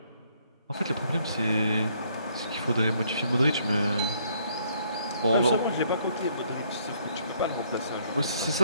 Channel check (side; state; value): both; inverted; correlation -0.67